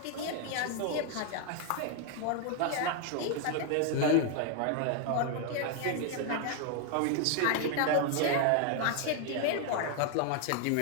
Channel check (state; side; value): different; both; correlation 0.00